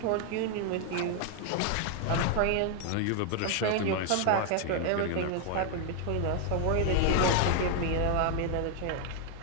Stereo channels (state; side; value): different; both; correlation 0.01